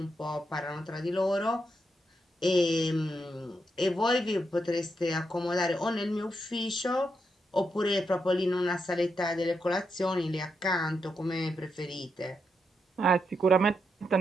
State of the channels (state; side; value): normal; both; correlation 0.82